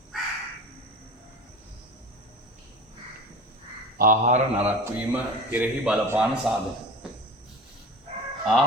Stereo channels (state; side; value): normal; both; correlation 0.35